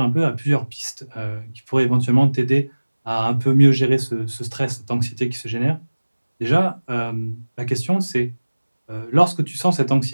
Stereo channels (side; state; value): both; inverted; correlation -1.00